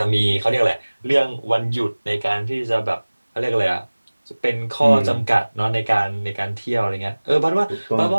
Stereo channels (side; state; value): both; inverted; correlation -1.00